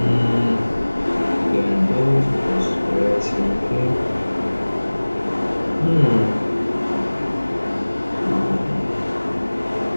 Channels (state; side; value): inverted; both; correlation -1.00